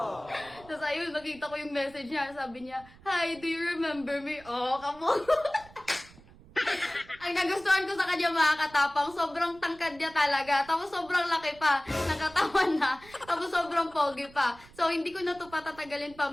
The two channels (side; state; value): right; noise; rumble, 23 dB below the sound